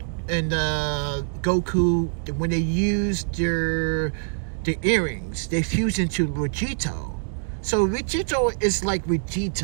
and Goku, when they use their earrings, they fuse into Vegito. So Vegito is like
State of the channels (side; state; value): left; silent; digital silence